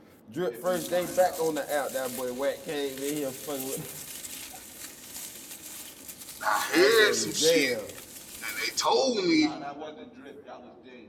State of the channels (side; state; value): both; identical; correlation 1.00